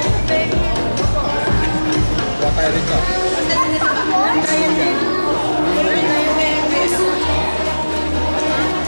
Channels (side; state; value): both; inverted; correlation -1.00